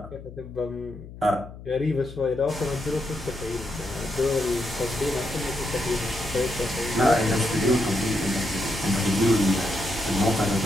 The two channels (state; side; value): noise; left; hum, 15 dB below the sound